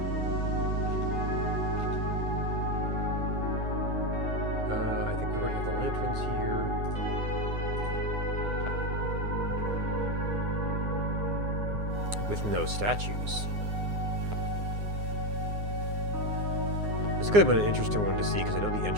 I think we already have the lanterns here. With no statues. This could have been an interesting one to see because I know the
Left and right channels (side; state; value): left; late; 9.7 ms